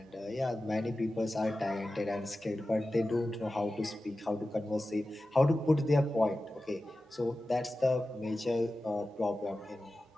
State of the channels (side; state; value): both; normal; correlation 0.94